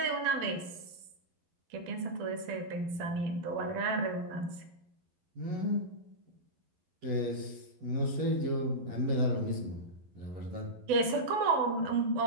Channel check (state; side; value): late; left; 11 ms